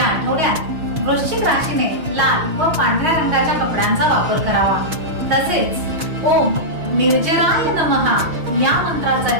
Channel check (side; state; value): left; late; 6.2 ms